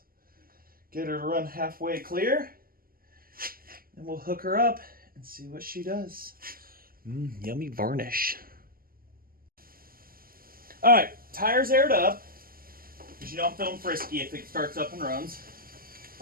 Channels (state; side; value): late; left; 0.42 ms